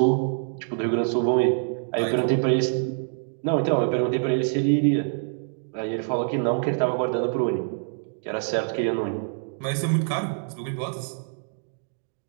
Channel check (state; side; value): silent; left; digital silence